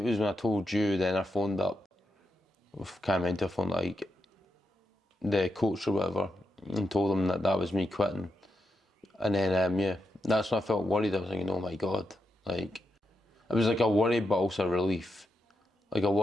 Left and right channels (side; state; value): both; normal; correlation 0.85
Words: was when I told you, then I phoned up, I can't remember, I phoned like the coach or whatever, and told him that was me quitting. And then, yeah, that's when I felt worried. I was thinking, oh my God, like, it was like a worry, but also a relief. Like a